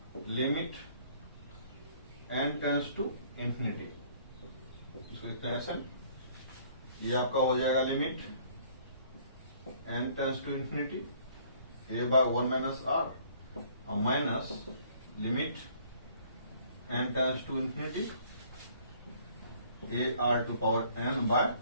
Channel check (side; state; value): both; inverted; correlation -0.58